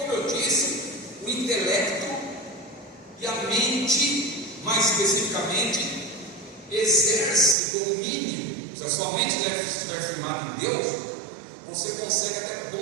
eu disse, o intelecto e a mente, mais especificamente, exerce domínio. Se a sua mente estiver firmada em Deus, você consegue até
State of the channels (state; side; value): drops out; left; at 7.6 s